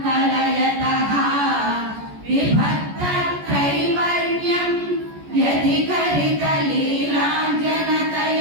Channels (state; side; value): late; left; 14 ms